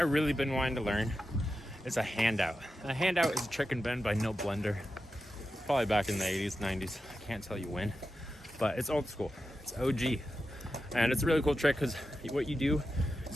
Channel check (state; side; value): normal; both; correlation 0.90